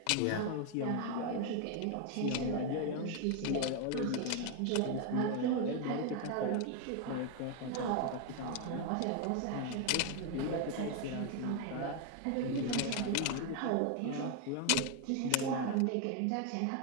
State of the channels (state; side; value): different; both; correlation 0.01